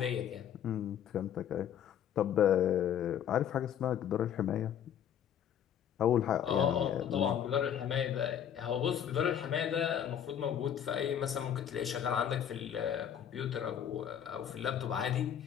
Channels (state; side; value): quieter; right; 9.3 dB